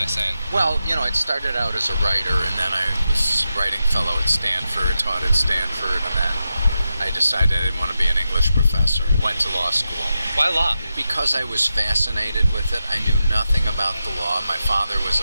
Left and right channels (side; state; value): both; inverted; correlation -0.89